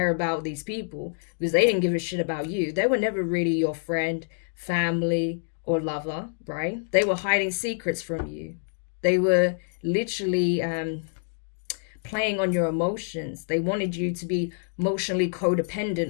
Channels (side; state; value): right; silent; digital silence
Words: about these people because they didn't give a shit about you. They were never really your friend, family, or lover, right? They were hiding secrets from you. They were literally playing on your emotions. They wanted you to be emotionally